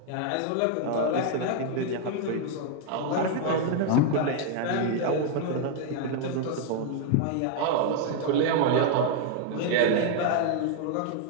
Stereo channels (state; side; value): different; both; correlation 0.00